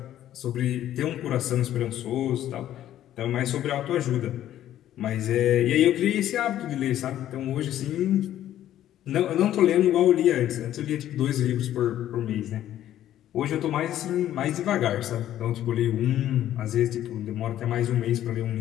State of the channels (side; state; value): right; quieter; 12.1 dB